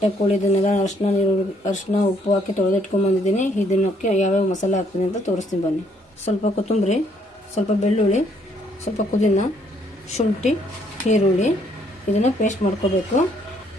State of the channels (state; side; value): normal; both; correlation 0.67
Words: ಕೋಳಿ ಇದನ್ನೆಲ್ಲ ಅರಿಶಿನ ಉಪ್ಪು ಹಾಕಿ ತೊಳೆದಿಟ್ಕೊಂಡ್ಬಂದಿದ್ದೀನಿ. ಇದನ್ನಕ್ಕೆ ಯಾವ್ಯಾವ ಮಸಾಲೆ ಹಾಕ್ತೀನಿ ಅಂತ ತೋರಿಸ್ತೀನಿ ಬನ್ನಿ. ಸ್ವಲ್ಪ ಕೊತ್ತಂಬರಿ, ಸ್ವಲ್ಪ ಬೆಳ್ಳುಳ್ಳಿ, ಸ್ವಲ್ಪ ಪುದೀನ, ಶುಂಠಿ, ಈರುಳ್ಳಿ ಇದನ್ನು ಪೇಸ್ಟ್ ಮಾಡ್ಕೋಬೇಕು.